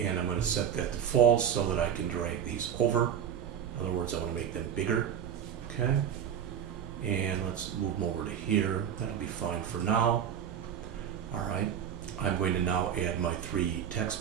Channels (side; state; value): left; quieter; 8.7 dB